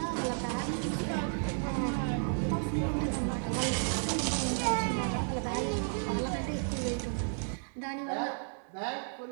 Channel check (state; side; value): silent; left; digital silence